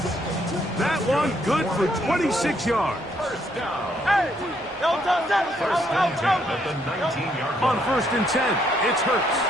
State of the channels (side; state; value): both; normal; correlation 0.71